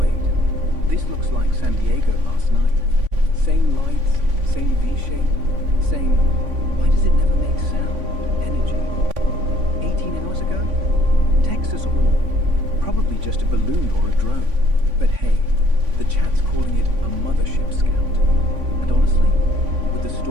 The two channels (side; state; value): left; late; 3.5 ms